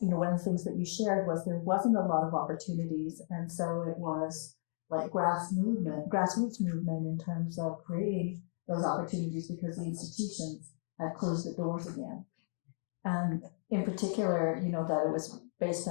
one of the things that you shared was there wasn't a lot of opportunities, and so it was like grassroots movement in terms of creating those opportunities because the institutions had closed the doors again. And in particular, that it was based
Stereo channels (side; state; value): right; silent; digital silence